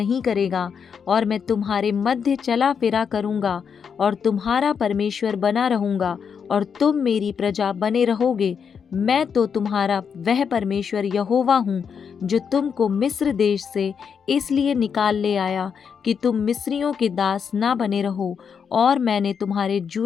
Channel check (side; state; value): right; quieter; 6.7 dB